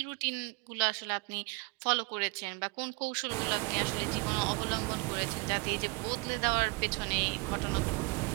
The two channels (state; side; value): quieter; left; 29.2 dB